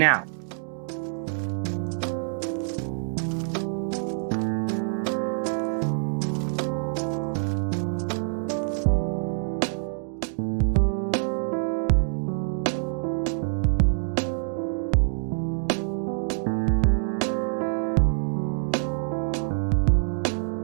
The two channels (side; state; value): left; silent; digital silence